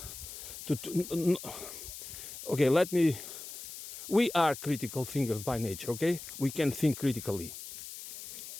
okay, we are critical thinkers by nature, okay? We can think critically.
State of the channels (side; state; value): left; noise; hiss, 11 dB below the sound